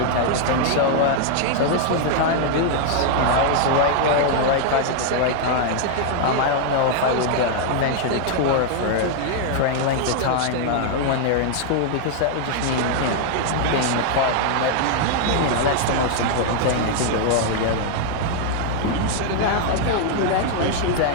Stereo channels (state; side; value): different; both; correlation 0.00